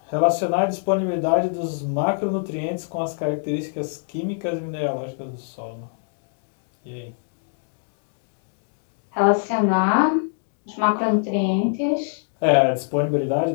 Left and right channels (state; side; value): silent; right; 63 dB below the other